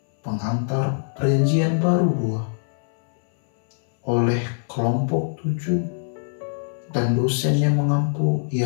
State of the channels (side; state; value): right; silent; 59 dB below the other